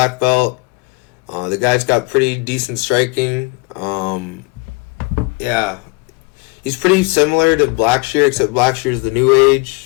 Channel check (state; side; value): quieter; right; 28.2 dB